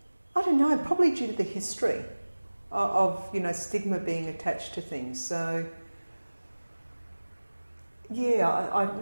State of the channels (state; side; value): inverted; both; correlation -1.00